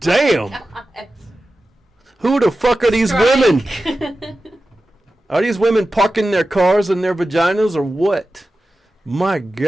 damn! God. Who the fuck are these women? Are these women parking their cars in their vaginas or what? My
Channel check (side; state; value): both; normal; correlation 0.94